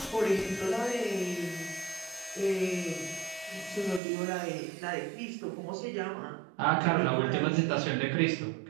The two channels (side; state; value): left; drops out; at 4.0 s